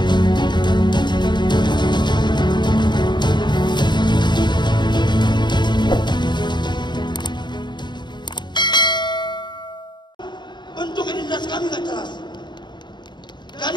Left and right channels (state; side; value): late; right; 0.22 ms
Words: Bentuk identitas kami nggak jelas.